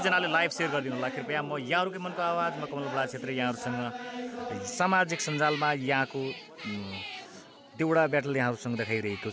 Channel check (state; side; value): identical; both; correlation 1.00